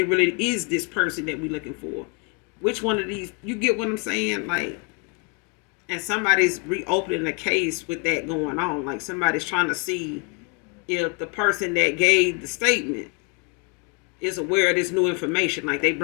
really is this person that we're looking for. Which one of these, you get what I'm saying? Like, and somebody's reopening the case with that going on. Like, somebody's trying to see if the person that gave the statement is aware of this new information. Like, they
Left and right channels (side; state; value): right; quieter; 33.8 dB